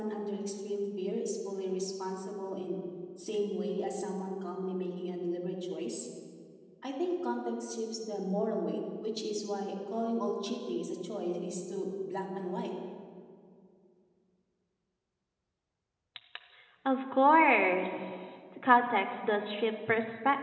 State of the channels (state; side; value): identical; both; correlation 1.00